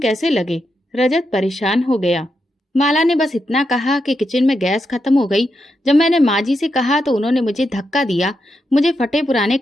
लगे? रजत परेशान हो गया। माला ने बस इतना कहा कि किचन में गैस खत्म हो गई। जब मैंने माँ जी से कहा तो उन्होंने मुझे धक्का दिया, मुझे फटे पुराने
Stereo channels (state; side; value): normal; both; correlation 0.85